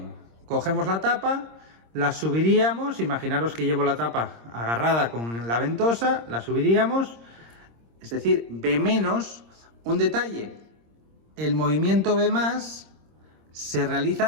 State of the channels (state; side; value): late; left; 26 ms